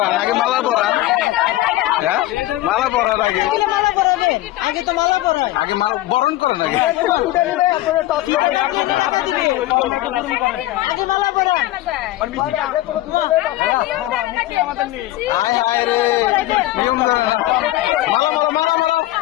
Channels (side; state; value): right; quieter; 16.1 dB